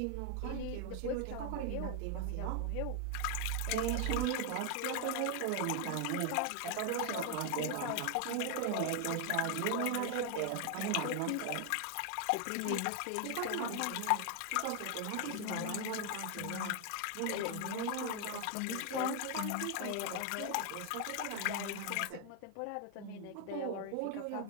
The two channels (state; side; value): different; both; correlation 0.00